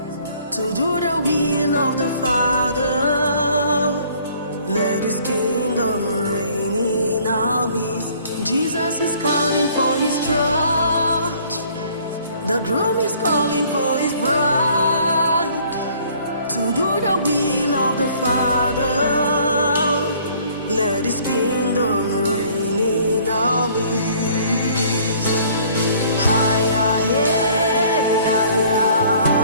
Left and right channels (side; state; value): both; inverted; correlation -0.57